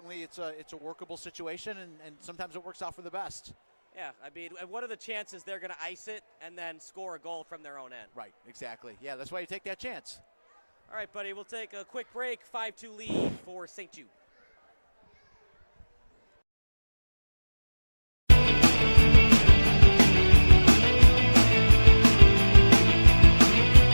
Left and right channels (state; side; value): inverted; both; correlation -1.00